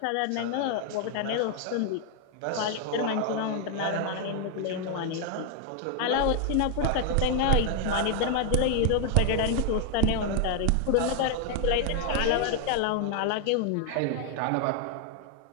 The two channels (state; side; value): different; both; correlation 0.00